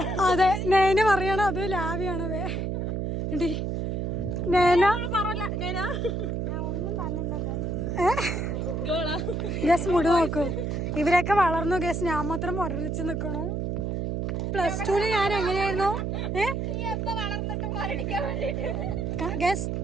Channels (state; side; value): noise; right; hum, 1 dB below the sound